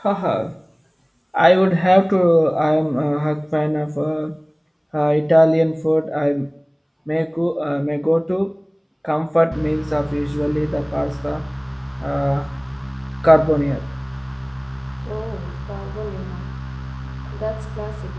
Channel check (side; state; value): both; identical; correlation 1.00